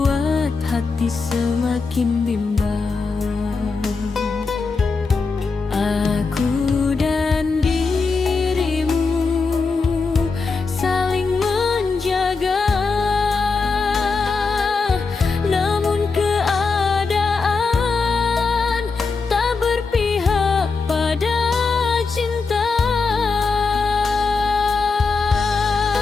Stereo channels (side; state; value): right; quieter; 4.5 dB